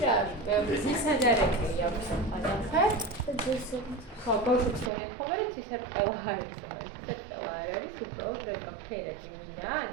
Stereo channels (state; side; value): drops out; left; at 4.9 s